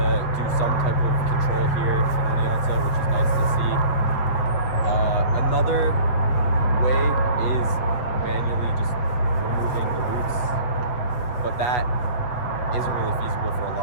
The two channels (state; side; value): late; right; 8.1 ms